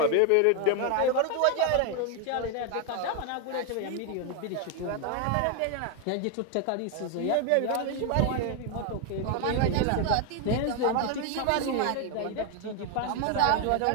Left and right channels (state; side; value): different; both; correlation 0.01